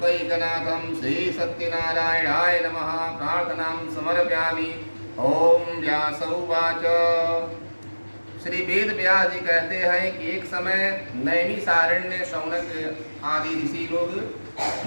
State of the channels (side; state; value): both; inverted; correlation -1.00